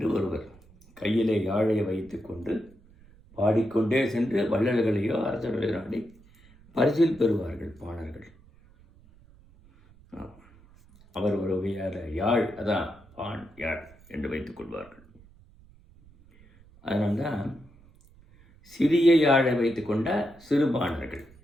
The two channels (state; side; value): noise; right; rumble, 26 dB below the sound